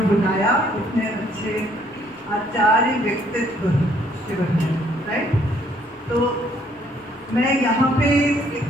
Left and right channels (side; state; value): both; normal; correlation 0.65